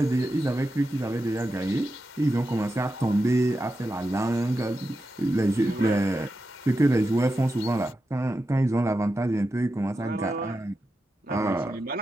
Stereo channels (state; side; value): normal; both; correlation 0.89